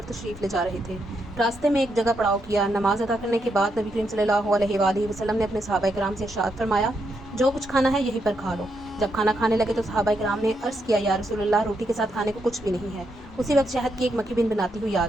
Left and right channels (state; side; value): normal; both; correlation 0.80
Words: تشریف لے جا رہے تھے۔ راستے میں ایک جگہ پڑاؤ کیا۔ نماز ادا کرنے کے بعد نبی کریم صلی اللہ علیہ وآلہ وسلم نے اپنے صحابہ کرام سے ارشاد فرمایا، جو کچھ کھانا ہے یہیں پر کھا لو۔ جب کھانا کھانے لگے تو صحابہ کرام نے عرض کیا، یا رسول اللہ، روٹی کے ساتھ کھانے کو کچھ بھی نہیں ہے۔ اسی وقت شہد کی ایک مکھی بن بناتی ہوئی آ